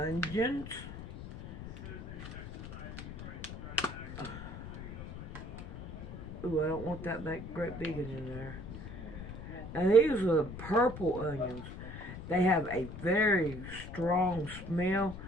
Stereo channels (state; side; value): noise; left; rumble, 10 dB below the sound